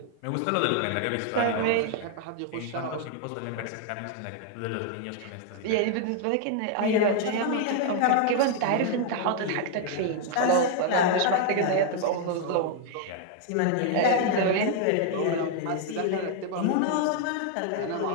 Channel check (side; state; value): both; different; correlation 0.00